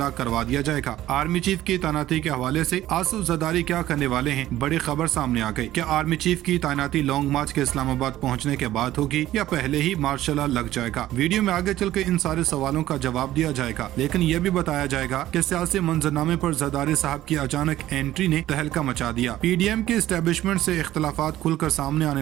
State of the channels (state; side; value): quieter; left; 14.2 dB